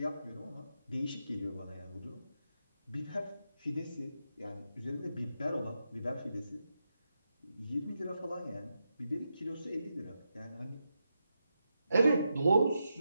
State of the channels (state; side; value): inverted; both; correlation -0.87